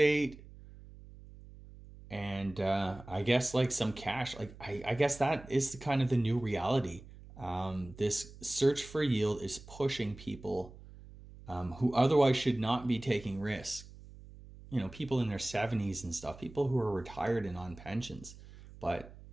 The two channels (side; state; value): right; noise; hum, 18 dB below the sound